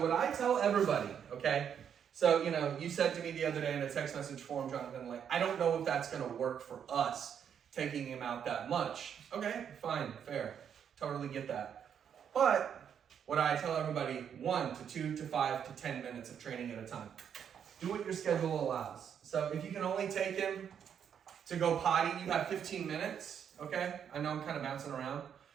what I tell everybody, okay? So, you said to me the other day in a text message form, Jonathan, I don't know if that's going to work for us, taking him out that much. Okay, fine, fair. Totally get that. But what I tell everybody, 1 to 2 to 5 to 10 minutes of training at a time. Do what your schedule allows. So if you can only take him to go potty, you have 15 minutes, okay? I know I'm kind of bouncing around,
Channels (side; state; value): left; quieter; 8.2 dB